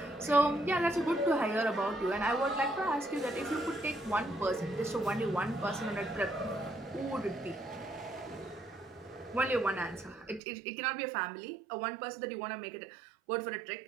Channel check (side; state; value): left; drops out; at 10.4 s